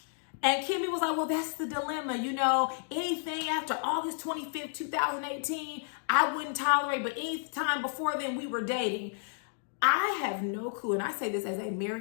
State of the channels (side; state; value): right; silent; digital silence